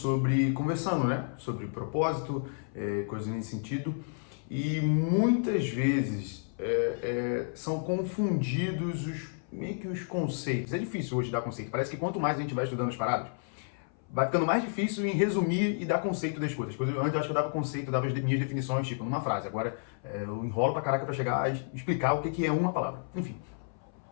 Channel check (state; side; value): silent; right; 56 dB below the other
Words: conversando, né? Sobre propósito, coisas nesse sentido. E muitas vezes são confundidos meio que os conceitos. É difícil hoje dar conceito. Parece que quanto mais a gente vai estudando as paradas, vai ficando mais difícil em resumir e dar conceito das coisas. Antes eu acho que eu dava conceito, dava as minhas definições, tipo, numa frase. Agora eu enrolo pra caraca pra chegar a explicar o que é uma palavra. Enfim.